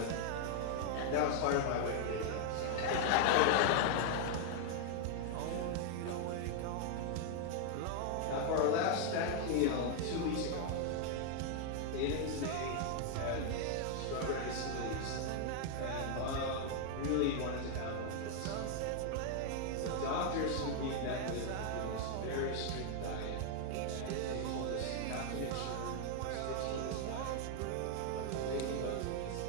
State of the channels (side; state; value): both; different; correlation 0.00